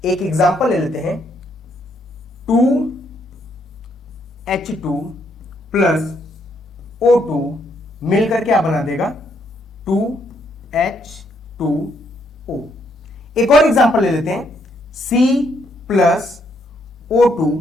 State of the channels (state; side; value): normal; both; correlation 0.73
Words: हैं, 2H2 प्लस O2 मिलकर क्या बना देगा, 2H2O। एक और एग्जांपल ले लेते हैं, C प्लस